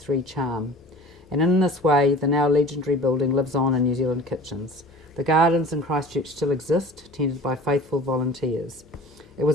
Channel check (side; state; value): both; normal; correlation 0.42